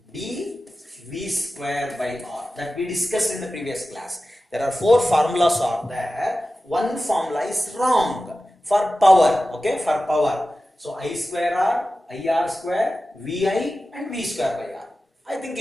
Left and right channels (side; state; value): both; normal; correlation 0.94